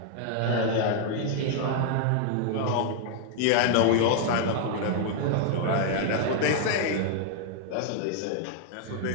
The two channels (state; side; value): different; both; correlation 0.00